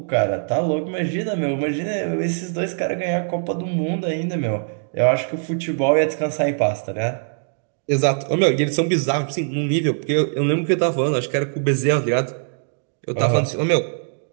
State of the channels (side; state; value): left; silent; digital silence